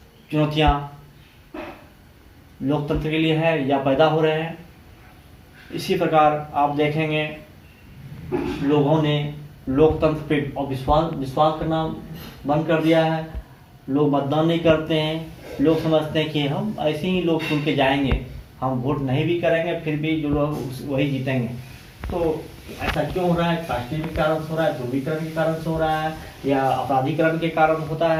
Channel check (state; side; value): identical; both; correlation 1.00